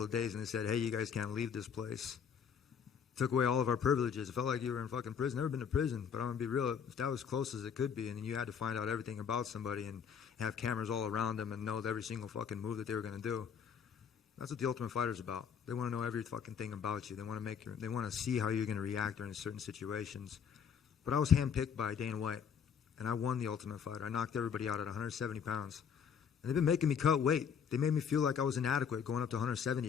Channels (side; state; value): right; quieter; 7.3 dB